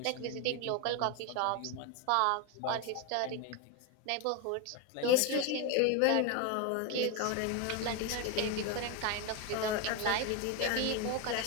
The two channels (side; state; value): both; different; correlation 0.02